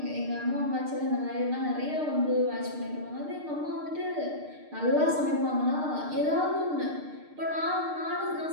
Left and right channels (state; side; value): late; left; 6.6 ms